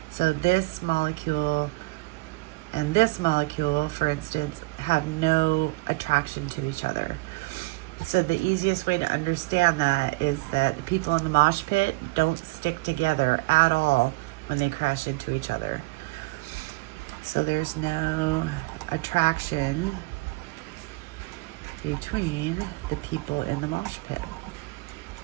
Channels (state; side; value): quieter; left; 24.5 dB